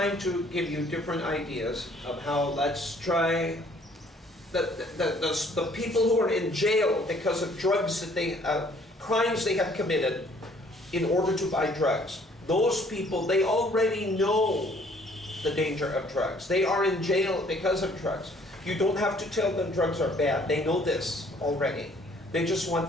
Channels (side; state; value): both; normal; correlation 0.60